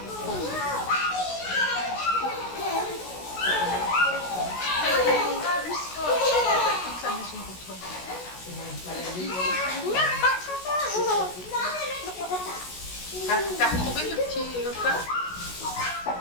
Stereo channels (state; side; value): late; right; 16 ms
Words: T'as retrouvé le petit repas?